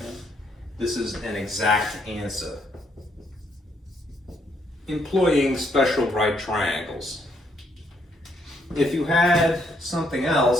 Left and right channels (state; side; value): normal; both; correlation 0.72